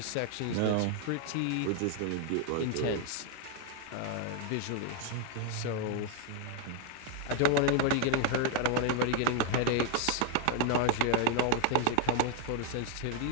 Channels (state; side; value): different; both; correlation 0.01